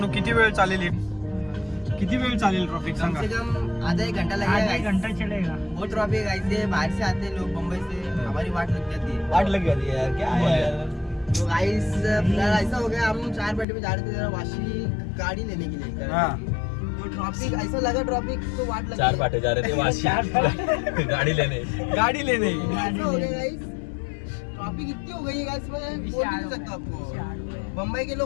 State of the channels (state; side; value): drops out; right; at 13.7 s